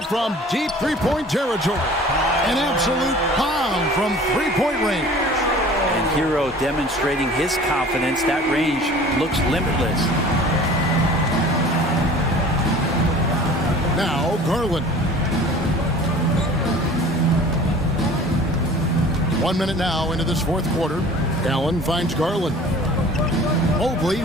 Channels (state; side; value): normal; both; correlation 0.45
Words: from deep three-point territory. An absolute bomb from three-point range. And Hero demonstrating his confidence. That range looks limitless. Now Garland. 1 minute now into this fourth quarter. Allen finds Garland. Mobley